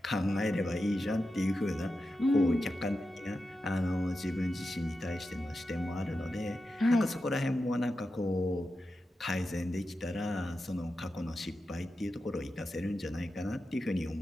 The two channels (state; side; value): normal; both; correlation 0.90